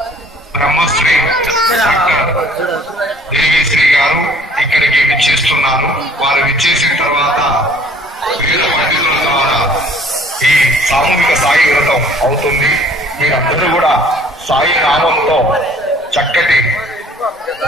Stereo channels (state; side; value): normal; both; correlation 0.55